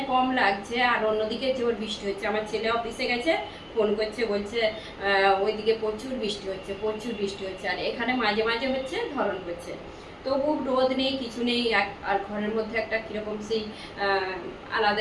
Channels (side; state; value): both; identical; correlation 1.00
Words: কম লাগছে আর অন্যদিকে জোর বৃষ্টি হচ্ছে। আমার ছেলে অফিসে গেছে, ফোন করছে, বলছে ওইদিকে প্রচুর বৃষ্টি হচ্ছে, প্রচুর বৃষ্টি হচ্ছে, আর এখানে মাঝে মাঝে হচ্ছে, ধরন করছে। তবু রোদ নেই, কিছু নেই, আর ঘরের মধ্যে একটা কীরকম সেই